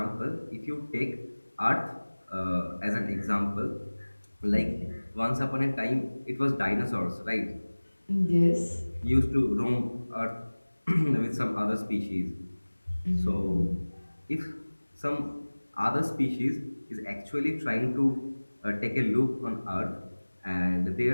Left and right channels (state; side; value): inverted; both; correlation -1.00